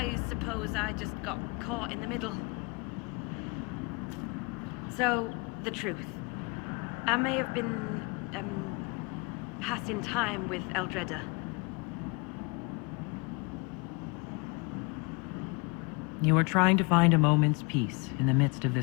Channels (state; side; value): quieter; right; 30.3 dB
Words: suppose I just got caught in the middle. So, the truth. I may have been, passing time with Eldreda. You were trying to find a moment's peace in the midst of